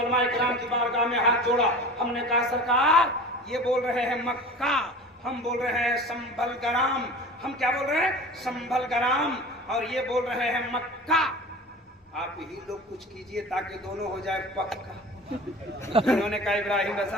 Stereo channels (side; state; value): both; normal; correlation 0.37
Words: इकराम की बारगाह में हाथ जोड़ा। हमने कहा सरकार ये बोल रहे हैं मक्का, हम बोल रहे हैं संभल ग्राम। हम क्या बोल रहे हैं? संभल ग्राम। और ये बोल रहे हैं मक्का। आप ही लोग कुछ कीजिए ताकि दोनों हो जाए पक्का। उन्होंने कहा इब्राहिम